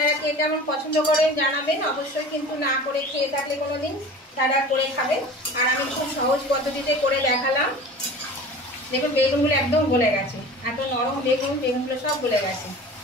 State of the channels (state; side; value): normal; both; correlation 0.39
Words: কে কেমন পছন্দ করেন জানাবেন অবশ্যই, কিন্তু না করে খেয়ে থাকলে কোনোদিন তারা করে খাবেন। আর আমি খুব সহজ পদ্ধতিতে করে দেখালাম। দেখুন বেগুনগুলো একদম গলে গেছে, এত নরম বেগুন, বেগুনগুলো সব গলে গেছে।